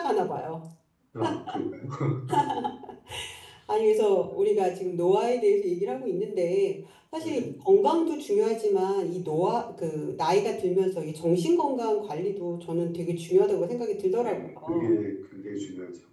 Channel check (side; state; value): both; identical; correlation 1.00